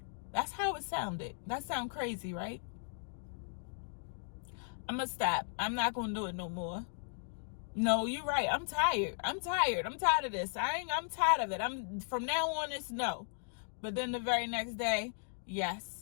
That's how it sounded. That sound crazy, right? I'm going to stop. I'm not going to do it no more. No, you're right. I'm tired. I'm tired of this. I'm tired of it. From now on, it's no. But then the very next day,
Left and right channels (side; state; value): right; silent; digital silence